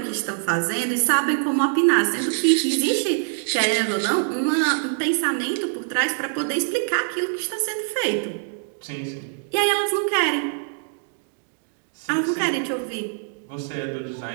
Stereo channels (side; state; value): left; silent; digital silence